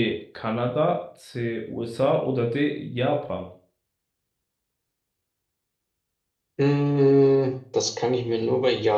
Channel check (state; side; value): identical; both; correlation 1.00